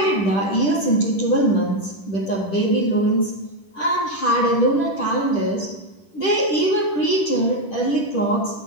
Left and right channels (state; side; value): late; right; 10 ms